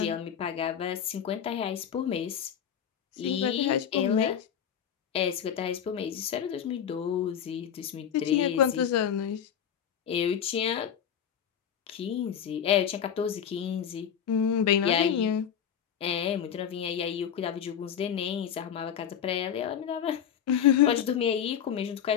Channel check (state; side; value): quieter; right; 8.6 dB